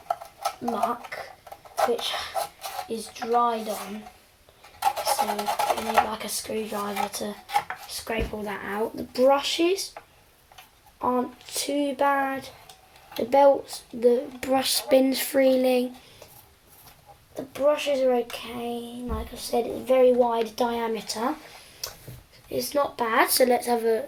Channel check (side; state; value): both; identical; correlation 1.00